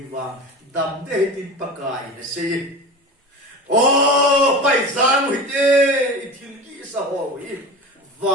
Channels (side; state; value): both; normal; correlation 0.31